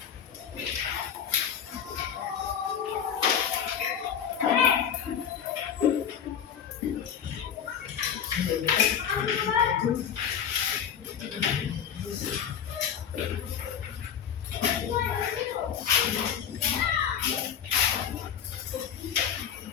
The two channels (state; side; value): quieter; right; 8.4 dB